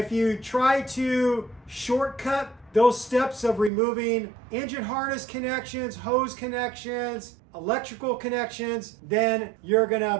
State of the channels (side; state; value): left; drops out; at 3.7 s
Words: you try to shortcut those steps of removing engine harness connections, hose connections, electrical connections, then you're gonna